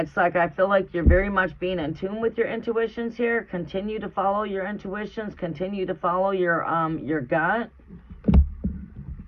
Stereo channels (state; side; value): identical; both; correlation 1.00